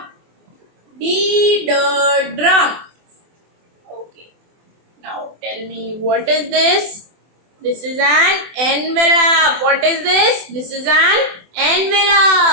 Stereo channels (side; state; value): left; late; 24 ms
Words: D drum. Okay. Now tell me, what is this? This is an envelope. What is this? This is an